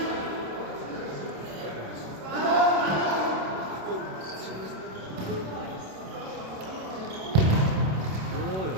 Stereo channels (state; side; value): late; left; 26 ms